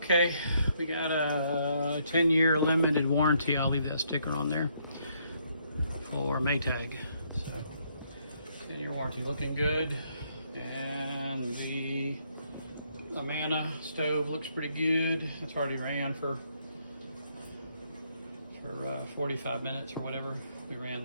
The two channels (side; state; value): both; inverted; correlation -0.71